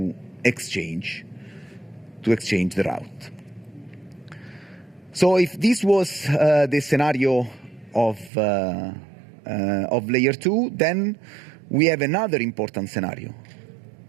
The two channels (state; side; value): drops out; left; at 8.3 s